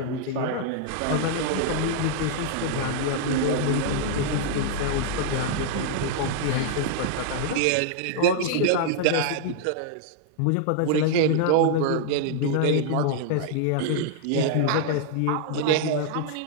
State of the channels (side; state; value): both; different; correlation -0.01